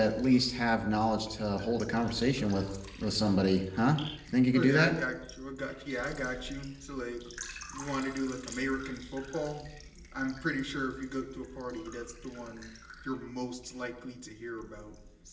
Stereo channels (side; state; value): both; identical; correlation 1.00